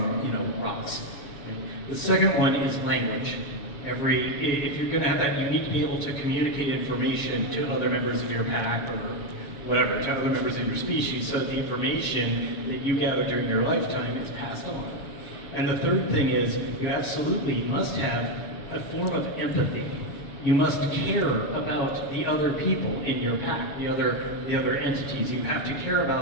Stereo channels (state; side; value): late; right; 7.1 ms